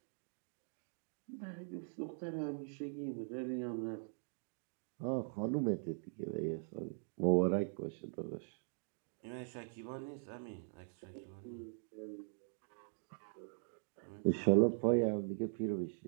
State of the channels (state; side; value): silent; left; digital silence